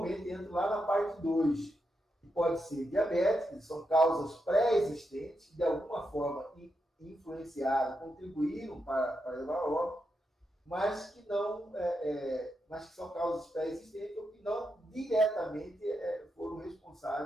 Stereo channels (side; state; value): both; normal; correlation 0.85